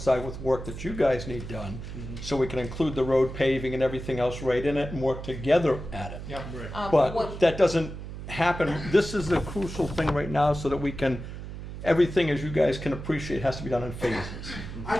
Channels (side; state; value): right; noise; hum, 9 dB below the sound